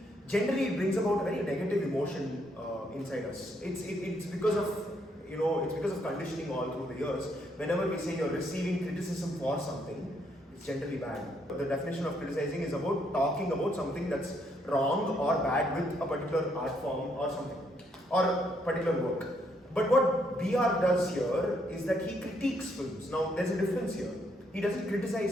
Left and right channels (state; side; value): normal; both; correlation 0.73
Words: it brings about a very negative emotion inside us. It's because of it's because of conditioning all through the years. Whenever we say you're receiving criticism for something, it's generally bad. The definition of criticizing is about talking about something that's wrong or bad with a particular art form or something, or a particular work. But what BR does here is that he critiques films. Now, there's a difference here. He doesn't